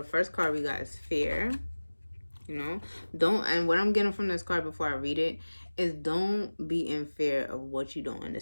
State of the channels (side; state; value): both; inverted; correlation -1.00